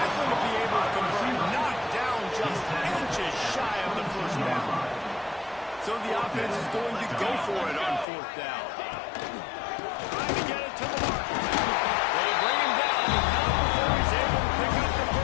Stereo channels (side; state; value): right; drops out; at 8.1 s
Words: going to be able to convert, knocked down just inches shy of the first down. So the offense is going to go for it on fourth down. Trying to get it to the mark. They bring him down, but not before he's able to pick up the